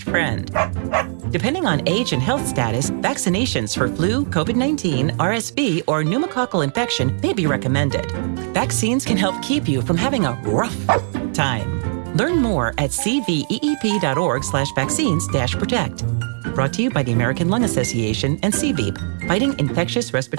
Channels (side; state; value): left; silent; digital silence